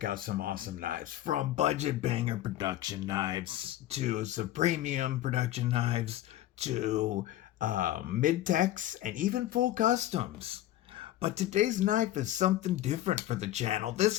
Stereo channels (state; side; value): quieter; right; 13.9 dB